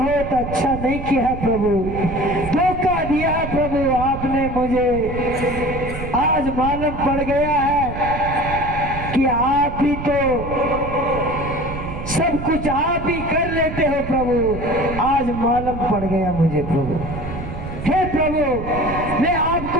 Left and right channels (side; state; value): right; noise; rumble, 8 dB below the sound